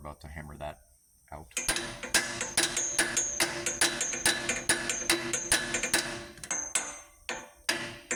to hammer that out.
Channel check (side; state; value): both; identical; correlation 1.00